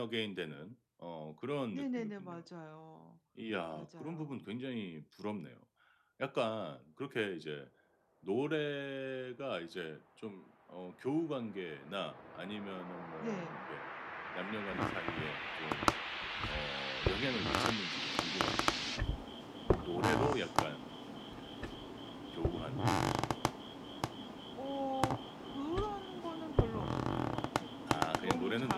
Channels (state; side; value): identical; both; correlation 1.00